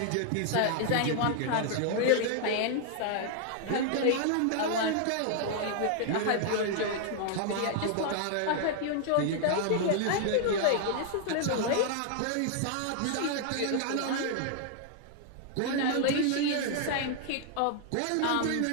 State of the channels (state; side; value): different; both; correlation 0.00